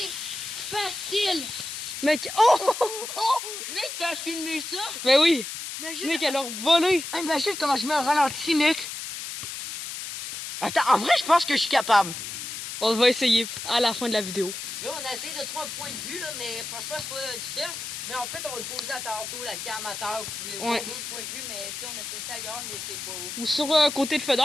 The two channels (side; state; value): left; noise; hiss, 7 dB below the sound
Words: facile. Mec, oh! Mec, t'as filmé ça? Ben oui. Imagine, Mec, elle a volé. imagine comment je mets un ralenti, mec. Attends, en vrai, je pense que je suis capable. On va essayer à la fin de la vidéo. Là, on a essayé de trouver un point de vue, là, mais franchement, c'est pas difficile. Mais en fait, on va le poser à tantôt, la cam à terre. Vous pouvez voir d'autres points de vue, mais tu sais, on a testé ailleurs, mais c'est pas haut. Ou sur côté de